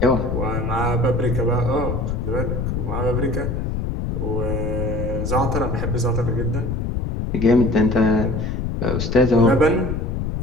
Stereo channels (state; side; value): noise; left; rumble, 2 dB below the sound